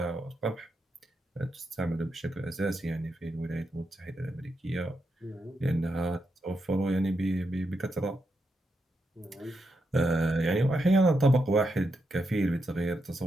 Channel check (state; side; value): normal; both; correlation 0.84